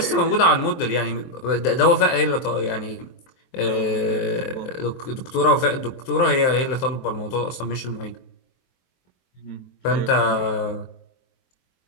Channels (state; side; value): late; right; 23 ms